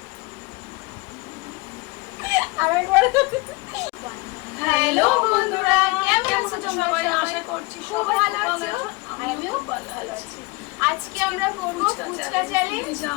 আরেকবার। হ্যালো বন্ধুরা, কেমন আছো তোমরা সবাই? আশা করছি খুব ভালো আছো, আমিও ভালো আছি। আজকে আমরা করব ফুচকা চ্যালেঞ্জ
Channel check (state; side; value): quieter; right; 24.9 dB